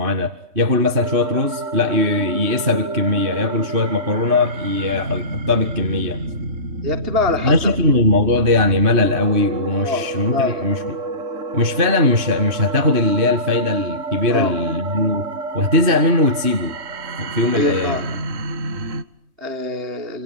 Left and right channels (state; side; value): late; left; 3.2 ms